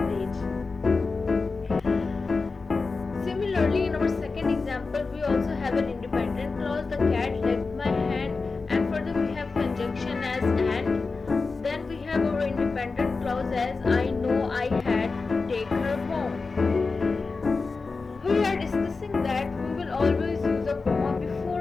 beach. Similarly, in our second example, we also have an independent clause, the cat licked my hand, and further we have conjunction as and. Then we have our independent clause as I know I had to take her home. We are discussing that we will always use a comma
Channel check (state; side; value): quieter; right; 4.2 dB